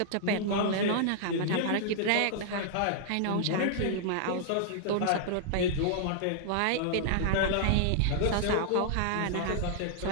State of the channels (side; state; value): both; different; correlation -0.01